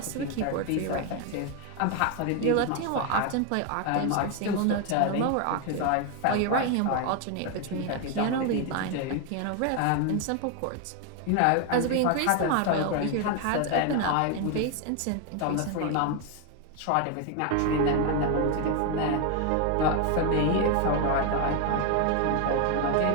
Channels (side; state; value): both; different; correlation 0.01